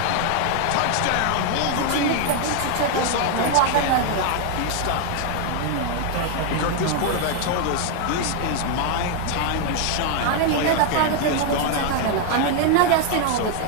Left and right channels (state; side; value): different; both; correlation 0.00